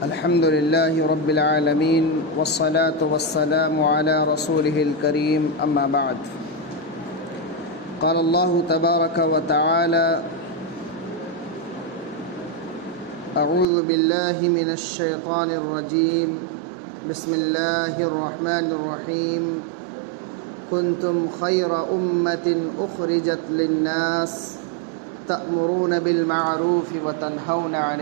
الحمد للہ رب العالمین والصلاة والسلام علی رسولہ الکریم، اما بعد۔ قال اللہ تبارک وتعالی: اعوذ باللہ من الشیطان الرجیم، بسم اللہ الرحمن الرحیم۔ کنتم خیر امۃ اخرجت للناس تأمرون بالمعروف وتنہون عن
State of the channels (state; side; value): drops out; left; at 13.7 s